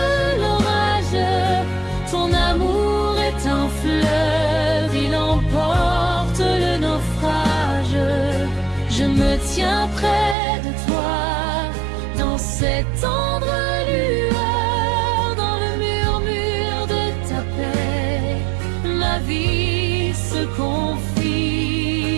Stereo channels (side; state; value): left; drops out; at 10.4 s